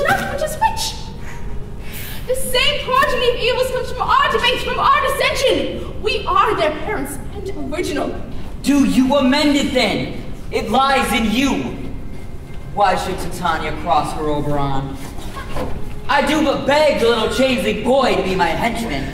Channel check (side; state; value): both; identical; correlation 1.00